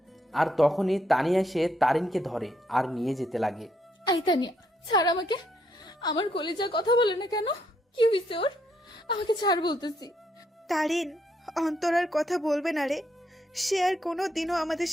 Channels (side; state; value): both; normal; correlation 0.74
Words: আর তখনই তানিয়া এসে তারিনকে ধরে আর নিয়ে যেতে লাগে। আই তানিয়া, ছাড় আমাকে। আমার কলিজা কথা বলে না কেন? কি হয়েছে ওর? আমাকে ছাড় বলতেছি। তারিন, অন্তর আর কথা বলবে না রে। সে আর কোনো দিনও আমাদের